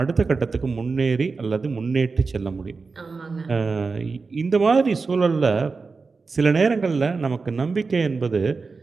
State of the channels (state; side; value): quieter; left; 4.4 dB